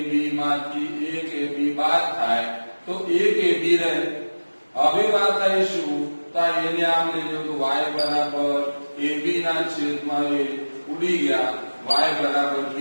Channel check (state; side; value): inverted; both; correlation -1.00